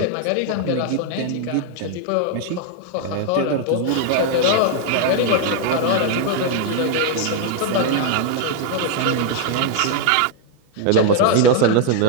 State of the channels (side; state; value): both; different; correlation 0.00